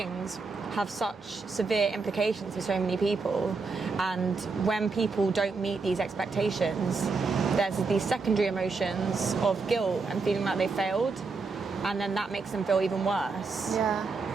have such severe implications for so many people. And when people don't meet these expectations, there's these secondary emotions of guilt and feeling like they failed, and then that makes them feel even worse. Yeah.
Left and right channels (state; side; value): quieter; left; 4.3 dB